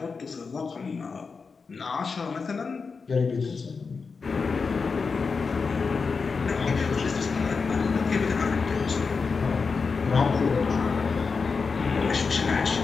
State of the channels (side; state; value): right; quieter; 4.9 dB